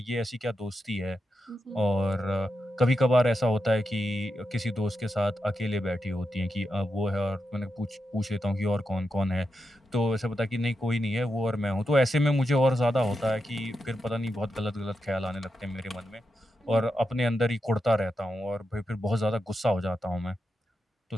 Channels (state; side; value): normal; both; correlation 0.87